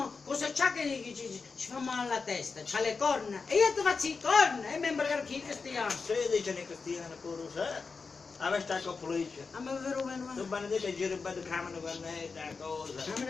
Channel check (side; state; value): right; quieter; 4.7 dB